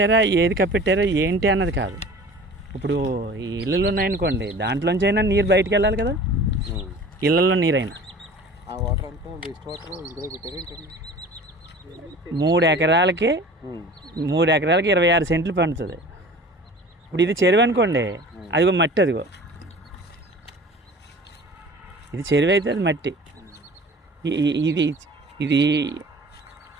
ఏది కప్పెట్టారా ఏంటి అన్నది కాదు. ఇప్పుడు ఈ ఇళ్ళలు ఉన్నాయనుకోండి, దాంట్లోంచి అయినా నీరు బయటకు వెళ్ళాలి కదా. ఇళ్ళల్లో నీరైనా ఆ వాటర్ అంతా వేస్ట్ వాటర్ ఇందులో పెట్టారు. 3 ఎకరాలకి 26 సెంట్లు పండుతుంది. ఇప్పుడు ఇది చెరువు అనుకోండి, అదిగో మట్టి, అదిగో ఇది చెరువు అయితే అది మట్టి. ఇది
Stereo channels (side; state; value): both; normal; correlation 0.42